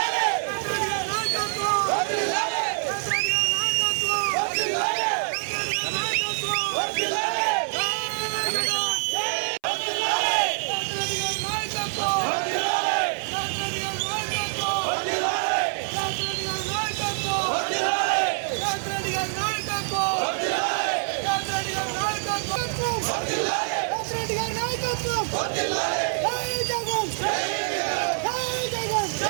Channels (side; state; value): left; silent; 61 dB below the other